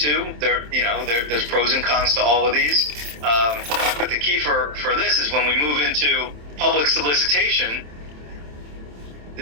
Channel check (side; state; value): left; late; 27 ms